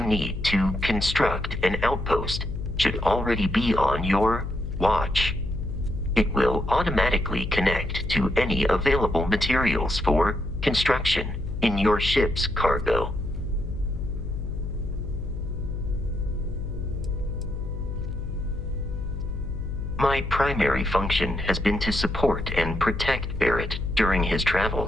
need to construct an outpost should already be on your watch. It will automatically connect to any available materials for construction in your ship's cargo. My primary function has been to support and protect Barrett during his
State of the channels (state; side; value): noise; left; hum, 5 dB below the sound